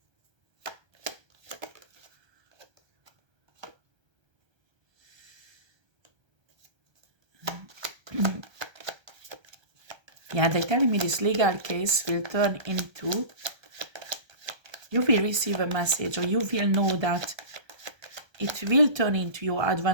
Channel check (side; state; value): left; late; 1.3 ms